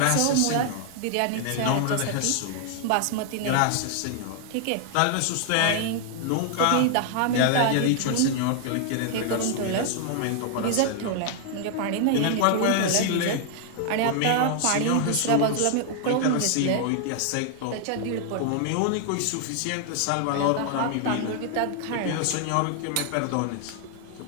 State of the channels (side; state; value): both; different; correlation 0.00